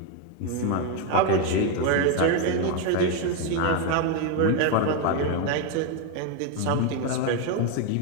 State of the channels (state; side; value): different; both; correlation 0.01